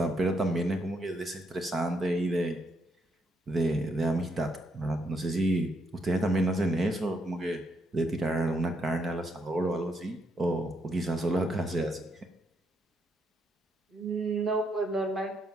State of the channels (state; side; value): normal; both; correlation 0.76